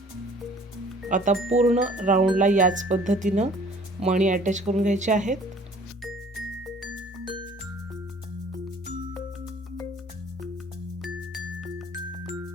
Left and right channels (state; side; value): normal; both; correlation 0.53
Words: आता पूर्ण राऊंडला याच पद्धतीनं मणी अटॅच करून घ्यायचे आहेत.